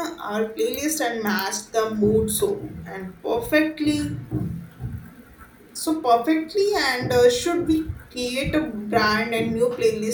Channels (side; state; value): both; identical; correlation 1.00